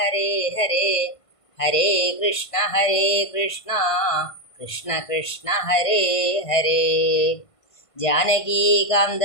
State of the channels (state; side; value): late; right; 1.5 ms